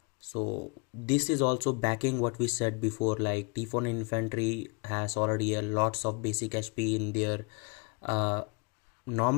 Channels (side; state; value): right; quieter; 31.5 dB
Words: So this is also backing what we said before, like T14 infantry has already lots of basic HP in their